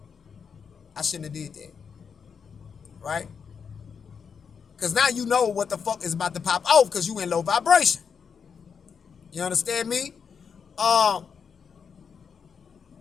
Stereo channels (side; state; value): right; quieter; 6.4 dB